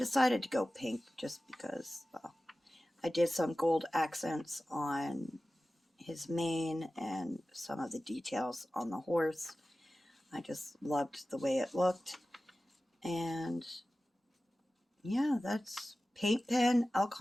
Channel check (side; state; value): both; normal; correlation 0.95